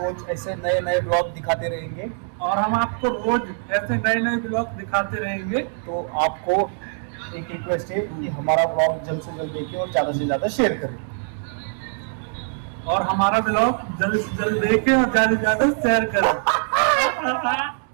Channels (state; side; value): silent; left; digital silence